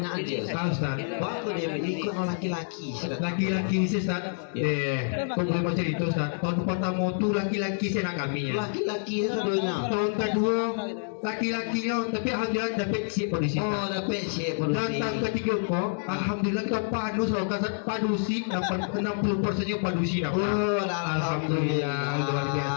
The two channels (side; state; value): right; silent; digital silence